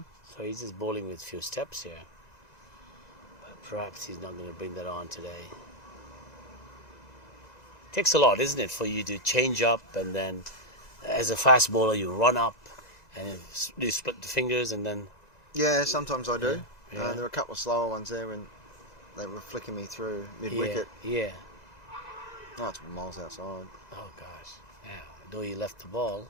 So he's just bowling with few steps here. But perhaps he's not going to bring that on today. Takes a lot, isn't it, for you to change up and then, as a fast bowler, you run up and you split the fingers and then. Yeah, sometimes I do. Yeah. There were a couple of slower ones there when they were flicking me through mid-wicket. Yeah. Oh, it's miles outside. Oh gosh. Yeah. Though you left the ball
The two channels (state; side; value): normal; both; correlation 0.01